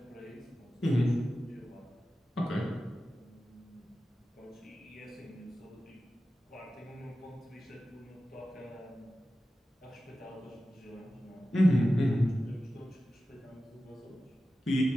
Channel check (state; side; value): normal; both; correlation 0.94